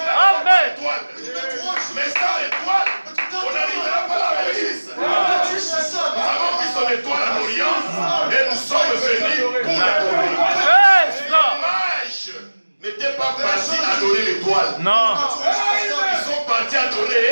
adorer l'étoile. Non. Ils sont partis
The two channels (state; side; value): inverted; both; correlation -1.00